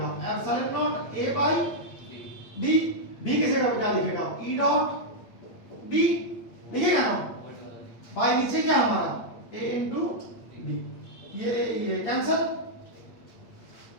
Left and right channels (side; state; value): right; late; 8.6 ms